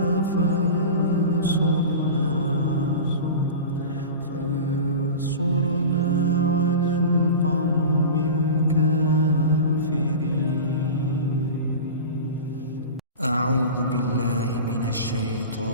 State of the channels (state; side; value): inverted; both; correlation -0.30